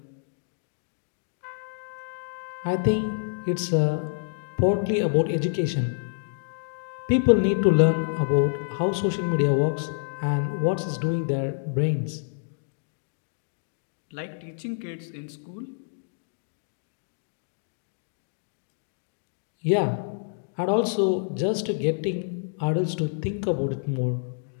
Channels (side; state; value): right; silent; digital silence